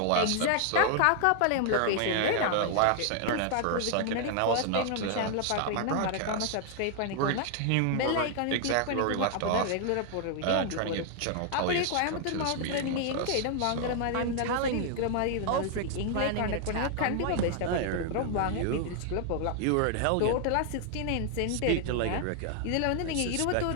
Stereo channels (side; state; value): both; different; correlation 0.00